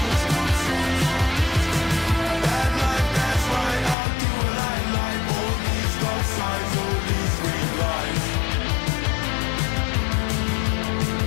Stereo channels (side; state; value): right; drops out; at 4.0 s